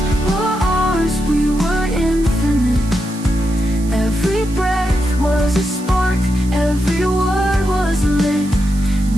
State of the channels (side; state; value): right; noise; hiss, 19 dB below the sound